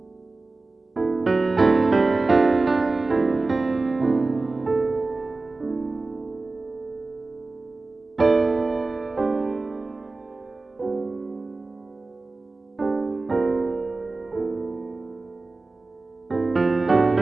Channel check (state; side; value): quieter; left; 3.5 dB